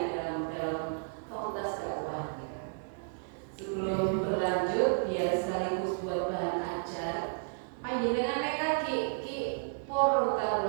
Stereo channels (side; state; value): left; silent; digital silence